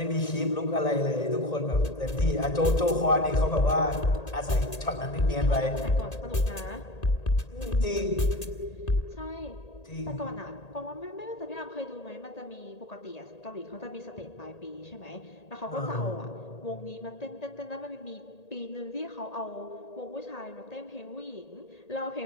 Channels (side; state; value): right; late; 1.8 ms